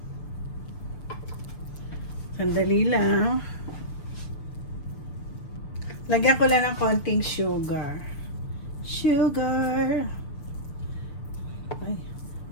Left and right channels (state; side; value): late; right; 6.8 ms